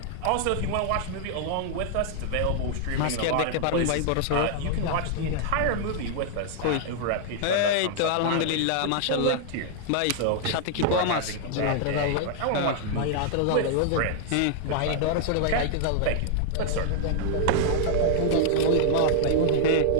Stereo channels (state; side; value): different; both; correlation -0.01